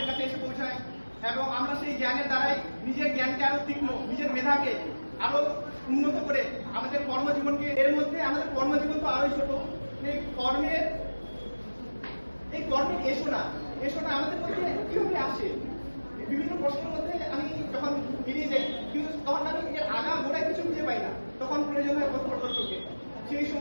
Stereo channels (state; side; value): inverted; both; correlation -1.00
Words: কাছে এসে পৌঁছায়, এবং আমরা সেই জ্ঞানের দ্বারাই নিজের জ্ঞানকে আরো তীক্ষ্ণ, নিজের মেধাকে আরো উন্নত করে আমাদের কর্মজীবনকে, এর মধ্যে আমাদের কর্মজীবন তো আরোই ছোট, এই কর্মের এসো না আমাদের মধ্যে কিভাবে আসে, বিভিন্ন প্রশ্নের মধ্যে আমি যখন বেরিয়ে যাই, কিন্তু তখন আমি এর আগা গোড়ায় কিছু খুঁজে পাই না, তখন প্রয়োজন হয় পথ প্রদর্শকের। সেই